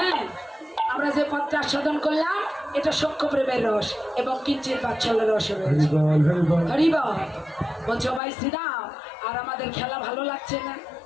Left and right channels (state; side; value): drops out; right; at 8.2 s